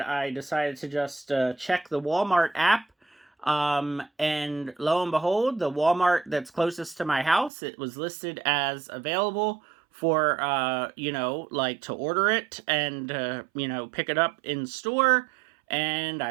I decided to just check the Walmart app. And lo and behold, the Walmart that's closest to my house, it was listed as available for, to order it and, pick it up in store. And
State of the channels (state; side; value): drops out; left; at 7.5 s